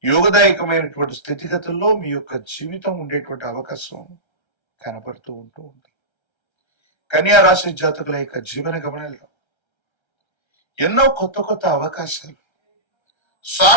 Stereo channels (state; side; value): late; right; 1.3 ms